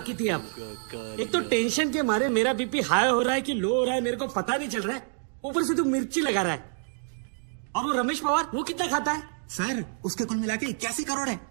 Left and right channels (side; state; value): left; silent; 60 dB below the other